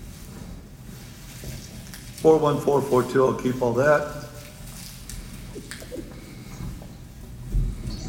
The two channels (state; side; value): identical; both; correlation 1.00